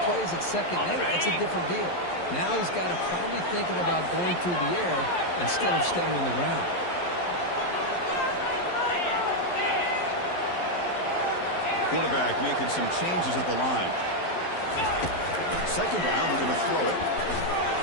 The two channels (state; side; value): late; right; 11 ms